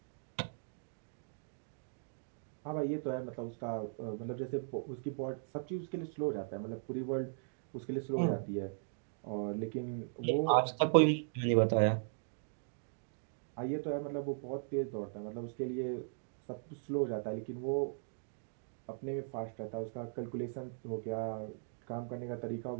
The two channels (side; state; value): left; silent; digital silence